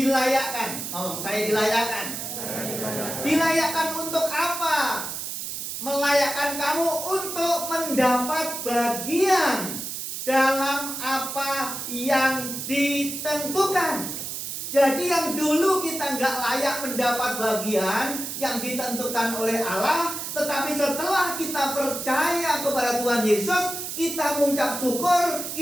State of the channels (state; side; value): noise; right; hiss, 6 dB below the sound